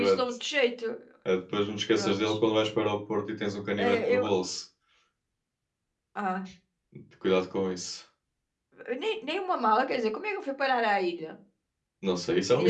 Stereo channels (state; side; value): identical; both; correlation 1.00